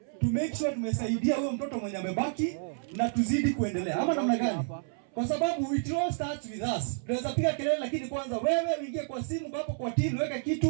to make sure tumesaidia huyo mtoto mwenye amebaki na tuzidi kuendelea. Ama namna gani? Kwa sababu it all starts with us. Tunaweza piga kelele, lakini kwanza wewe uingie kwa simu hapo kwa team, weka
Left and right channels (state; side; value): silent; left; 58 dB below the other